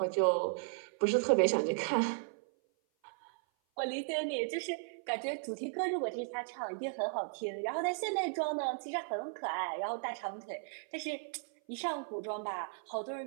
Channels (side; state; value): left; silent; 54 dB below the other